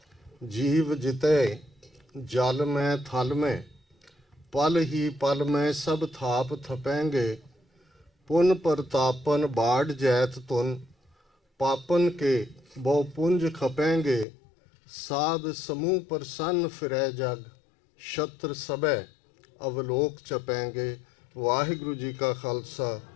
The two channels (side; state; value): right; drops out; at 14.2 s